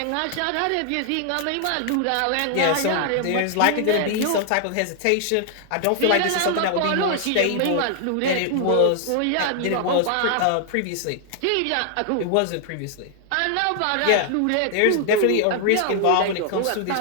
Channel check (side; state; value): both; different; correlation 0.00